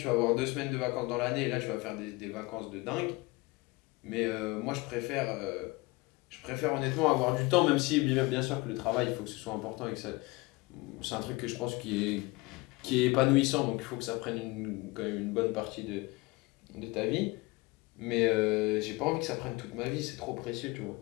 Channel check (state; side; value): quieter; right; 23.4 dB